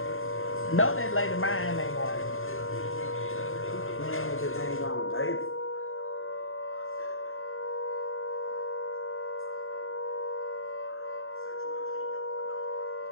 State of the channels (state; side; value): late; right; 0.60 ms